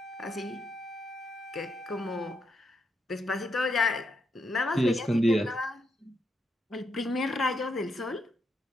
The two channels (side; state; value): both; normal; correlation 0.80